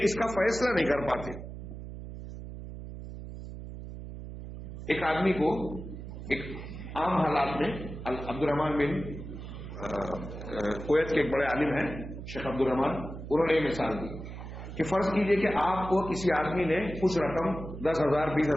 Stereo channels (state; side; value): noise; right; hum, 10 dB below the sound